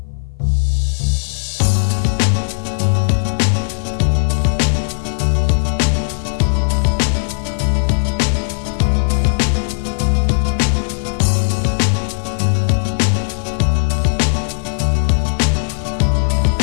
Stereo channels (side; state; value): right; silent; 58 dB below the other